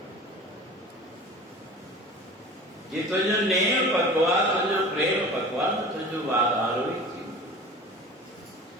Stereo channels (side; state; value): both; normal; correlation 0.39